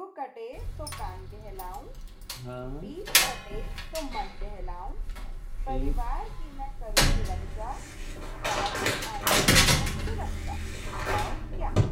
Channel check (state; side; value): identical; both; correlation 1.00